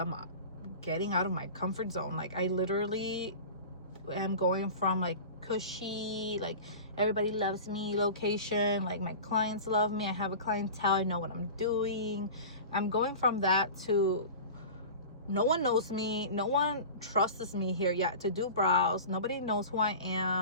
getting out of my comfort zone. Like I literally am going from like cushy, like everybody loves me location, like my clients love me, I have a clientele, I know what I'm doing. I'm going from that to no one knows me, no one trusts me here yet to do brows. Nobody knows who I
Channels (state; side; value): inverted; both; correlation -0.35